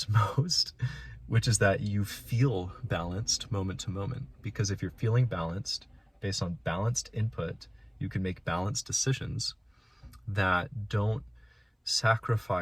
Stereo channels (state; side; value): identical; both; correlation 1.00